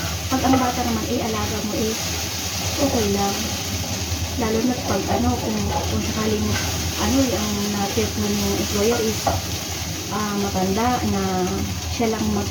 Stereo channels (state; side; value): identical; both; correlation 1.00